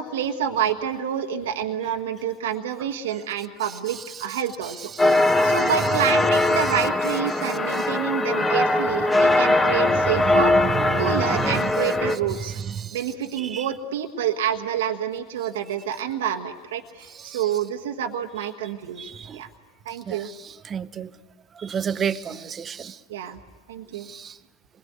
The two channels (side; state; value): both; normal; correlation 0.50